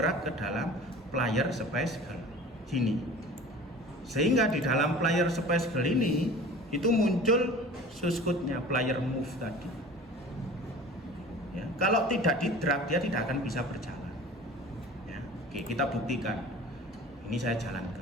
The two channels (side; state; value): both; normal; correlation 0.41